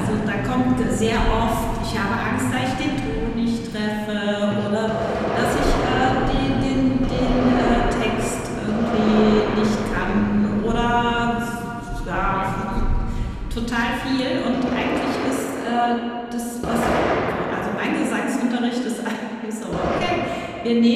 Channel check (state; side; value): identical; both; correlation 1.00